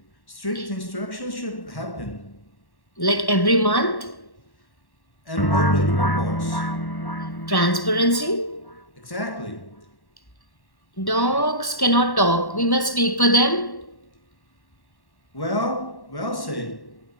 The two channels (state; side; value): late; right; 1.1 ms